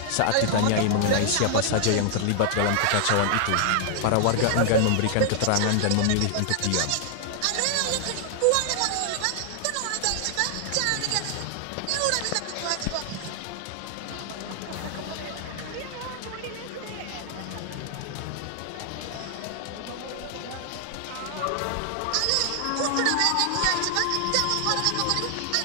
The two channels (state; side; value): different; both; correlation 0.00